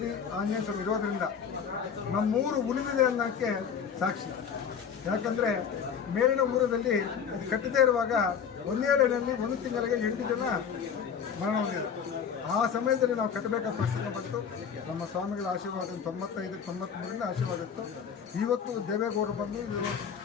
ಆಂಜನೇಯ ಸ್ವಾಮಿ ಇರೋದರಿಂದ ನಮ್ಮೂರು ಉಳಿದಿದೆ ಅನ್ನೋಕ್ಕೆ ಸಾಕ್ಷಿ. ಯಾಕಂದರೆ ಮೇಲಿನ ಊರದಲ್ಲಿ ಅದು ಕಟ್ಟದೇ ಇರುವಾಗ ಒಂದೇ ಲೈನಲ್ಲಿ ಒಂದು ತಿಂಗಳಿಗೆ 8 ಜನ ಮರಣ ಹೊಂದಿದ್ರು. ಆ ಸಮಯದಲ್ಲಿ ನಾವು ಕಟ್ಟಬೇಕಾದ ಪರಿಸ್ಥಿತಿ ಬಂತು. ನಮ್ಮ ಸ್ವಾಮಿಗಳ ಆಶೀರ್ವಾದ 95-93ರಿಂದ ಆಶೀರ್ವಾದ ಇತ್ತು. ಇವತ್ತು ದೇವೇಗೌಡರು ಬಂದು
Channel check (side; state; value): right; quieter; 7.2 dB